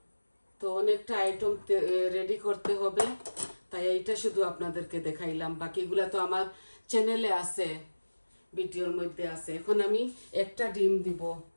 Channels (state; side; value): inverted; both; correlation -1.00